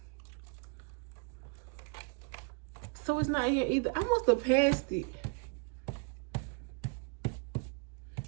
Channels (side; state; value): left; quieter; 37.6 dB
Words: So it's not here either. I must have passed it.